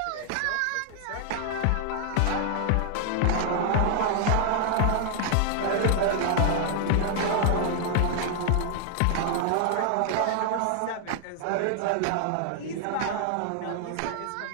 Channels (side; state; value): both; different; correlation 0.00